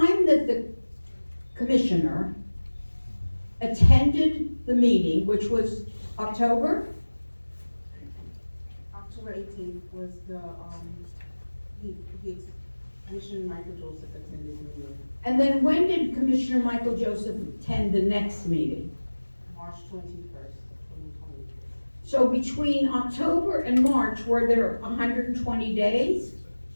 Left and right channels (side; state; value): both; inverted; correlation -1.00